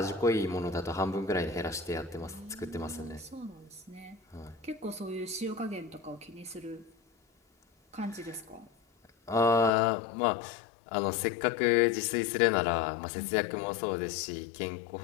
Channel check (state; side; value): drops out; right; at 9.7 s